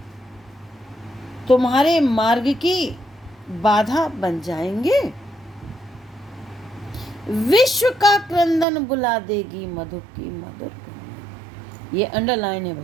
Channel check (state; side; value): drops out; left; at 8.7 s